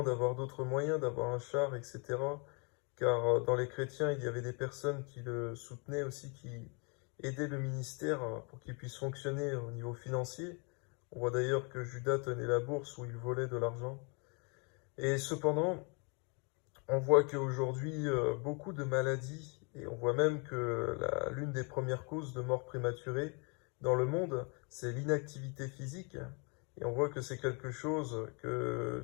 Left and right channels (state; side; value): quieter; right; 34.3 dB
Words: d'avoir d'autres moyens, d'avoir un char, etc. Car dans les chrétiens, il y avait des personnes qui le soutenaient aussi, qui aidaient le ministère pour qu'il puisse fonctionner au niveau financier. On voit d'ailleurs que Judas tenait la bourse où il volait de l'argent. Et cependant, on voit qu'aujourd'hui, beaucoup de maladies, et on voit même que l'une des premières causes de mort prématurée dans le monde, c'est l'inactivité physique. Et on voit que c'est quelque chose que